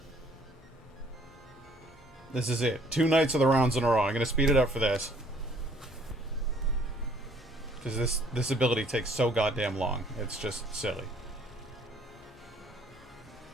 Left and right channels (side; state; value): both; normal; correlation 0.61